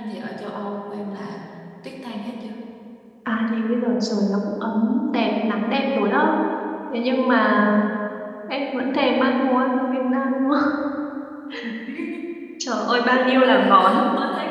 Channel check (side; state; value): both; identical; correlation 1.00